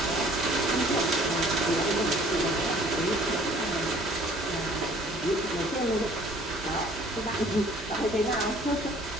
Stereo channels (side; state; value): both; normal; correlation 0.55